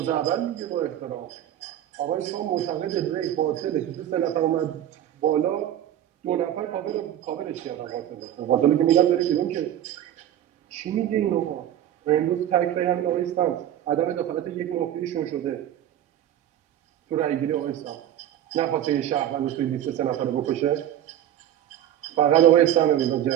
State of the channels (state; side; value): quieter; left; 11.3 dB